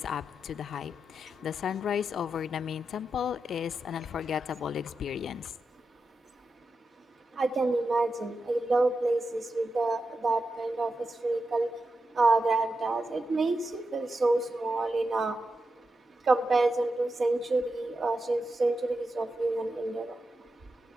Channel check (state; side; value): normal; both; correlation 0.88